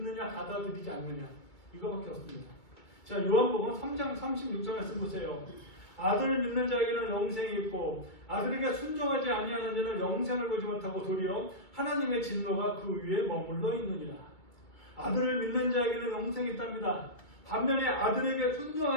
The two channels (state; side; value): late; right; 2.3 ms